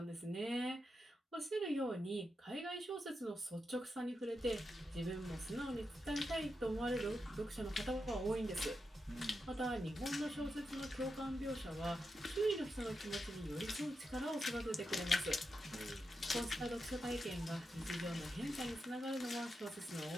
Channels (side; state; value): both; normal; correlation 0.87